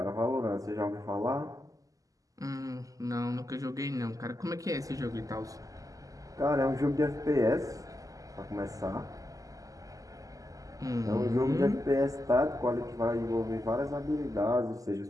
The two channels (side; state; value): left; late; 0.17 ms